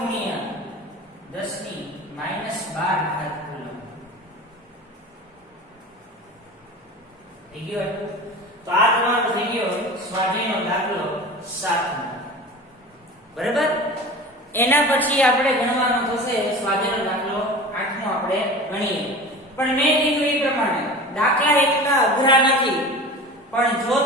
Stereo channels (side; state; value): both; normal; correlation 0.35